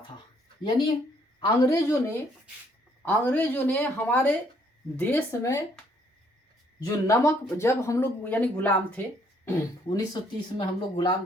यानी अंग्रेजों ने हमारे देश में जो नमक, जब हम लोग यानी गुलाम थे 1930 में हम लोग गुलाम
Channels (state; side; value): normal; both; correlation 0.67